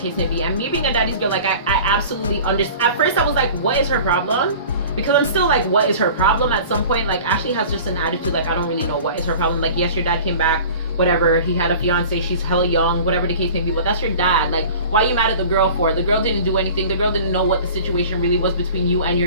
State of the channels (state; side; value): inverted; both; correlation -0.42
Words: may be. And me being a daddy's girl, like, I absolutely understand. At first I was like, what is her problem? Because I'm still like, what is her problem? At some point, like, Ashley has just an attitude like, I don't really know what is her problem. Like, yes, your dad came back, whatever, he had a fiance, she's hella young, whatever the case may be, but that's your dad. Like, why are you mad at the girl for? The girl didn't do anything. The girl didn't know what the situation really was between you and